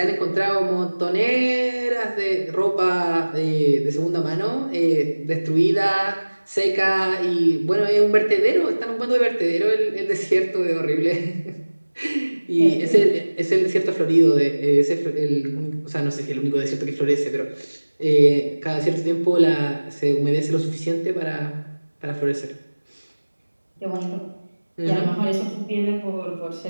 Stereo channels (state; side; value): inverted; both; correlation -1.00